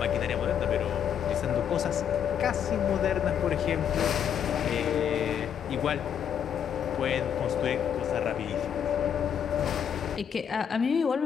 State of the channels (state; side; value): quieter; right; 8.5 dB